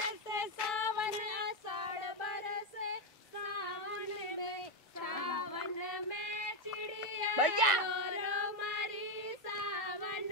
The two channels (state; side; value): normal; both; correlation 0.06